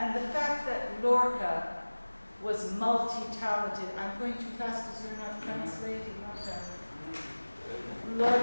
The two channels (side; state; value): both; inverted; correlation -1.00